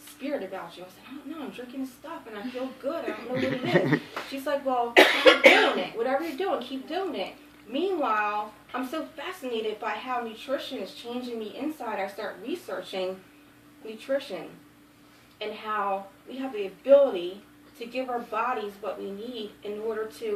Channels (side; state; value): both; identical; correlation 1.00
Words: about you. I said, I don't know, I'm drinking this stuff and I feel good. I don't know what it is. She's like, well, keep doing it. Whatever you're doing, keep doing it. Meanwhile, I'm so fascinated by how nutrition is changing me inside. I start researching nutrition and how we have the ability to give our bodies what we need in order